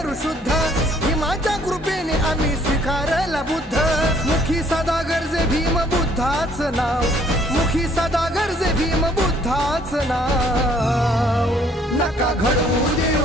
शुद्ध, भीमाच्या कृपेने आम्ही स्वीकारला बुद्ध। मुखी सदा गरजे भीम बुद्धाच नाव, मुखी सदा गरजे भीम बुद्धाच नाव। नका घडवू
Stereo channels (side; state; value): both; normal; correlation 0.62